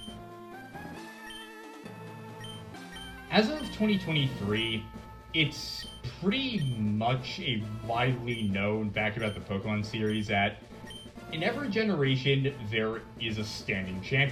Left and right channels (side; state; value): both; identical; correlation 1.00